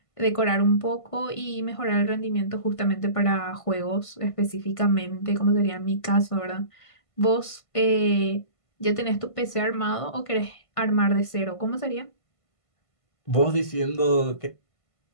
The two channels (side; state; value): right; late; 1.5 ms